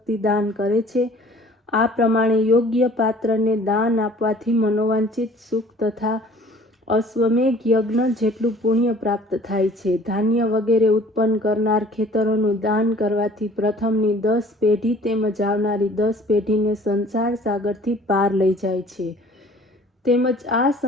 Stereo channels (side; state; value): both; normal; correlation 0.51